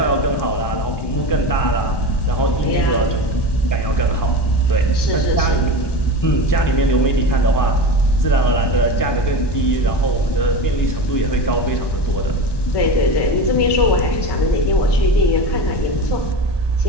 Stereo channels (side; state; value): right; late; 1.1 ms